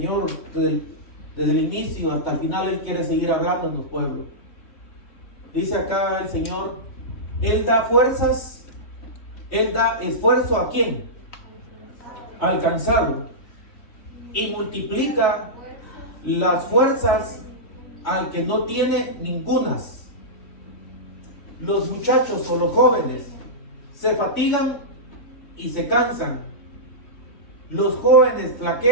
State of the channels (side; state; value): right; late; 3.2 ms